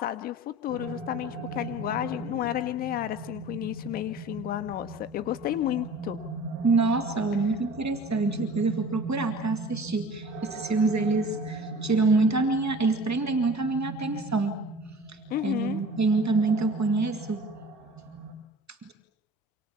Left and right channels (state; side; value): normal; both; correlation 0.43